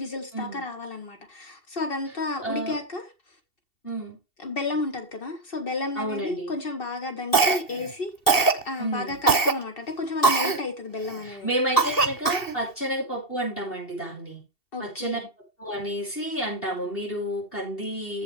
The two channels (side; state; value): right; late; 2.7 ms